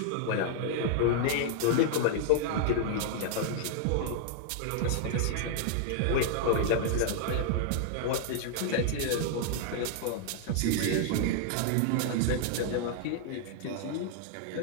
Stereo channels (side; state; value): both; different; correlation 0.00